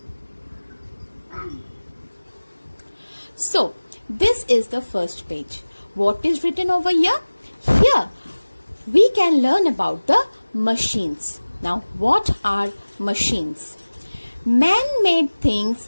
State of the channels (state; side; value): inverted; both; correlation -1.00